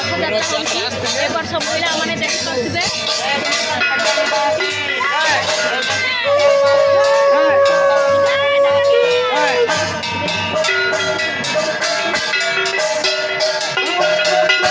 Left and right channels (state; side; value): identical; both; correlation 1.00